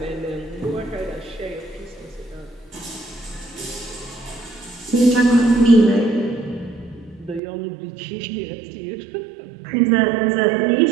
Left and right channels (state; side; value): drops out; left; at 7.4 s